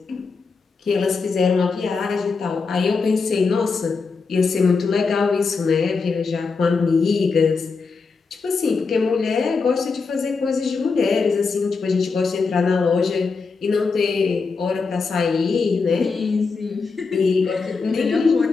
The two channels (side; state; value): right; quieter; 4.7 dB